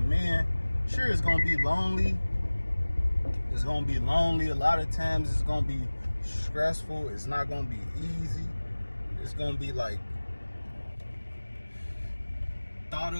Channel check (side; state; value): both; inverted; correlation -1.00